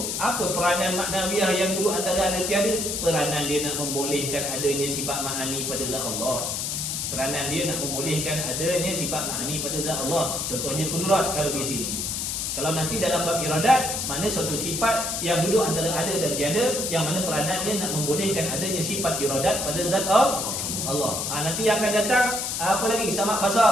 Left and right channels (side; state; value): left; noise; hiss, 2 dB below the sound